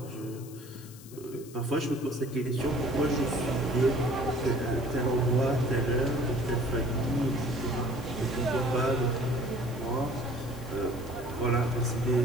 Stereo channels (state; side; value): noise; left; hiss, 19 dB below the sound